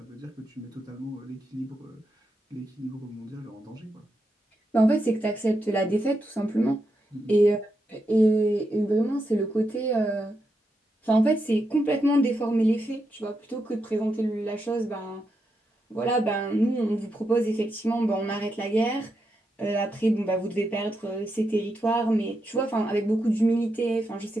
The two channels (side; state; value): both; normal; correlation 0.84